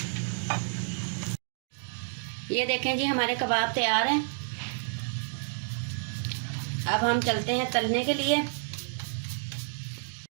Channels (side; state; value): left; silent; digital silence